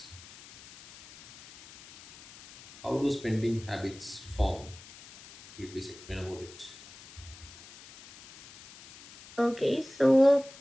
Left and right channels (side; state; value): left; noise; hiss, 19 dB below the sound